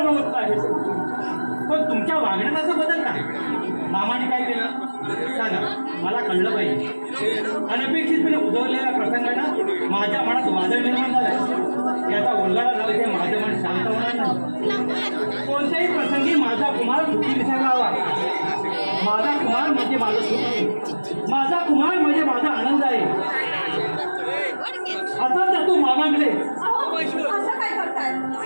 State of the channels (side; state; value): both; inverted; correlation -1.00